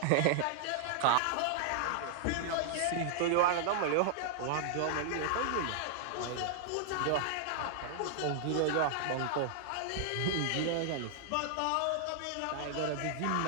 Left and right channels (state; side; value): different; both; correlation -0.01